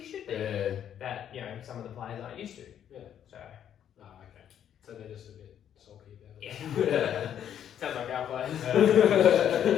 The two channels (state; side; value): quieter; right; 9.7 dB